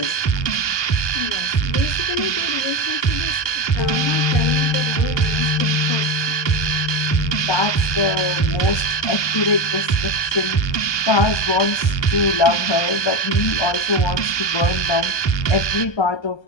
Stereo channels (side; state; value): right; late; 1.2 ms